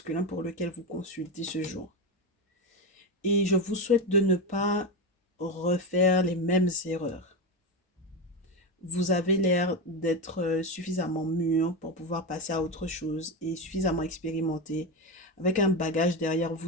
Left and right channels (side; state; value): both; normal; correlation 0.15